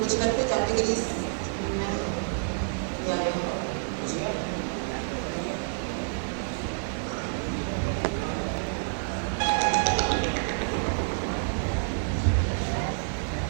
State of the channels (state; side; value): silent; left; digital silence